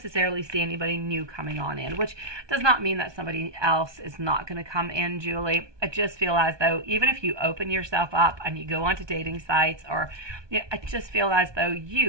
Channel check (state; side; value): late; left; 1.2 ms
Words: see anybody new coming on in, which does not mean that somebody else is not going to come in, Julie. I just feel as though even if you open yourself up and you go onto dating sites, or I just feel as though